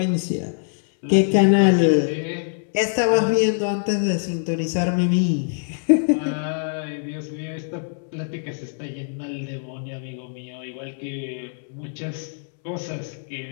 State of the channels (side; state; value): right; silent; 63 dB below the other